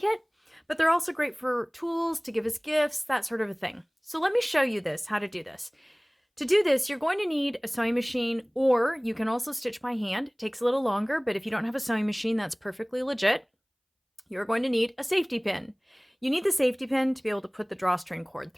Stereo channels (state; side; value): identical; both; correlation 1.00